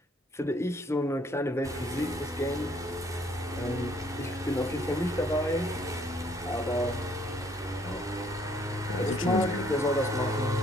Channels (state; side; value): normal; both; correlation 0.64